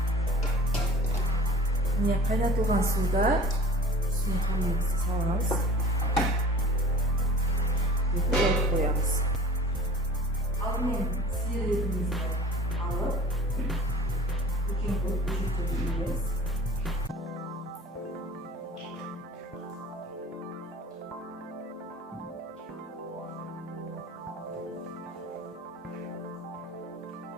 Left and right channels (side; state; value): both; normal; correlation 0.43